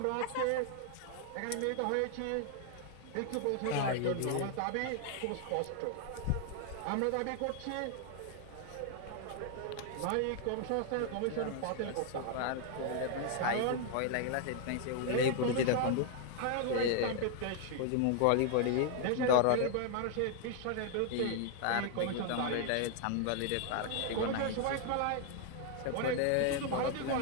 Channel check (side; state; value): both; different; correlation 0.00